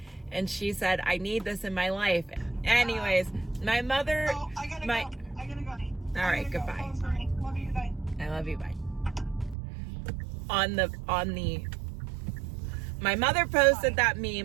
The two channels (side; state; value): left; drops out; at 9.6 s